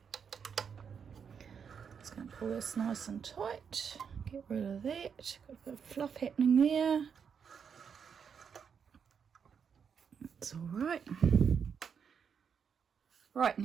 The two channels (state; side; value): quieter; left; 6.9 dB